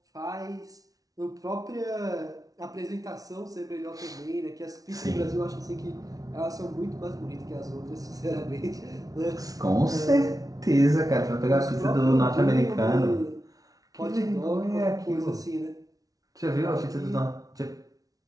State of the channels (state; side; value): late; left; 0.18 ms